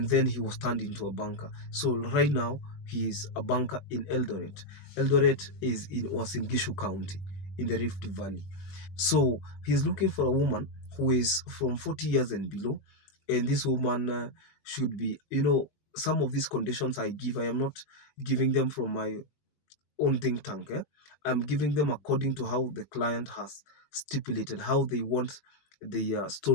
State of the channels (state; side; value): late; right; 21 ms